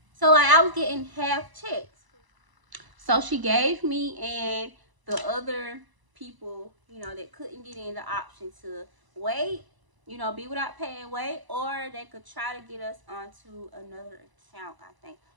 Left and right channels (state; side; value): late; left; 1.0 ms